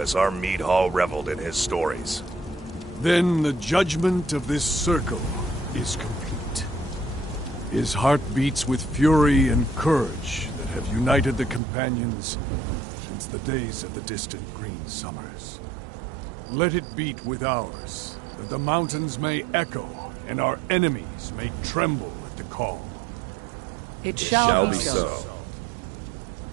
our mead hall reveled in his stories. Then the judgment of this circle is complete. His heart beats with fury and courage that have united the companions since the days of the distant green summers. Let it beat with ours, that the mountains may echo and our enemies may tremble at the call. It shall be so.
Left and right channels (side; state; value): left; drops out; at 11.6 s